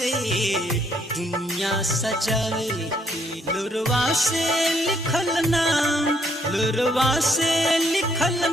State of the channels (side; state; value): both; normal; correlation 0.69